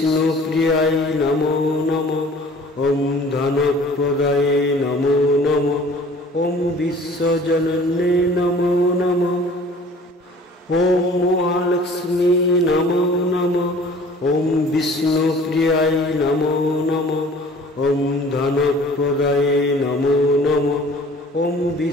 প্রিয়ায় নমো নমঃ, ওম ধনপ্রদায়ে নমো নমঃ, ওম বিশ্বজনন্যে নমো নমঃ। ওম মহালক্ষ্মী নমো নমঃ, ওম বিষ্ণু প্রিয়ায় নমো নমঃ, ওম ধনপ্রদায়ে নমো নমঃ, ওম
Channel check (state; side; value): normal; both; correlation 0.49